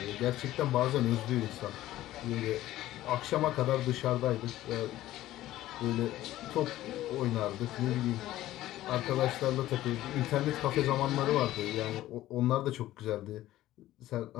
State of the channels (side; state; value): right; quieter; 14.8 dB